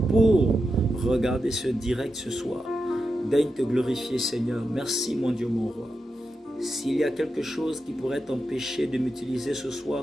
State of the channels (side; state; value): both; normal; correlation 0.89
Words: pour regarder ce direct ce soir. Daigne te glorifier Seigneur. Merci mon Dieu, mon Roi. S'il y a quelque chose qui pourrait t'empêcher de m'utiliser ce